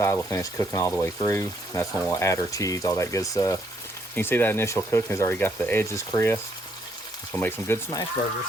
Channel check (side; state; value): both; normal; correlation 0.71